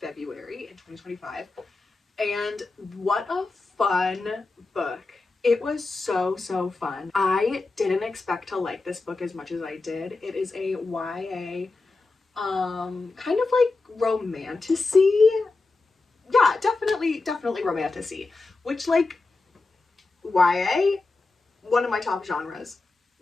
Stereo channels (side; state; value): right; quieter; 3.6 dB